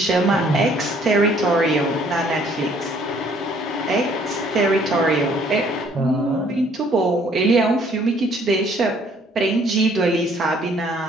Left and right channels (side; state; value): both; normal; correlation 0.61